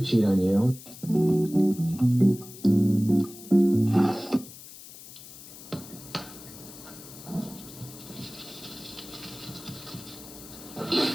cheat on you,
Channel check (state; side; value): noise; left; hiss, 16 dB below the sound